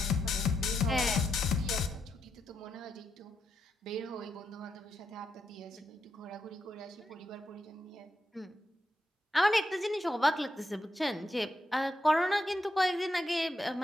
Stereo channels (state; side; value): normal; both; correlation 0.83